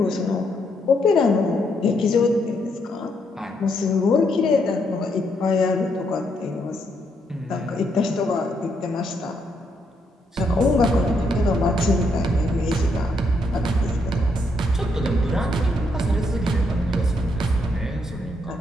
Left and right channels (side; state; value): both; normal; correlation 0.76